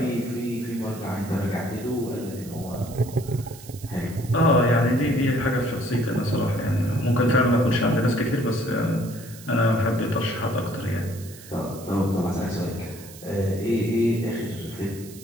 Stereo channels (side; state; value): right; noise; hiss, 18 dB below the sound